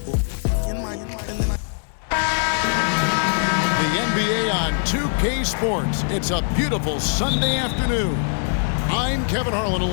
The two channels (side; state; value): right; silent; 64 dB below the other